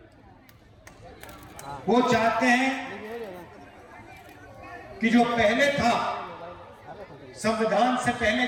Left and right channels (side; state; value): both; identical; correlation 1.00